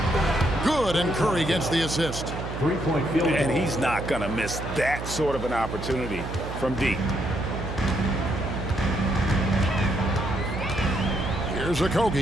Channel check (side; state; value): right; noise; hum, 7 dB below the sound